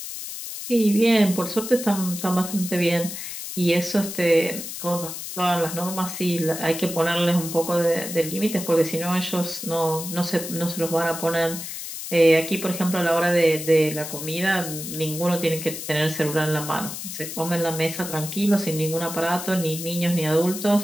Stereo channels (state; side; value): noise; left; hiss, 8 dB below the sound